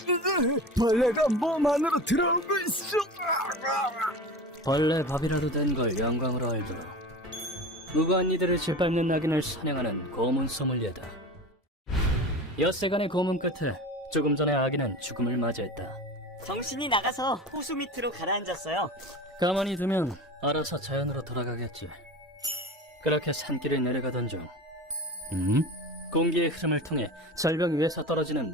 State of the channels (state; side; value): normal; both; correlation 0.32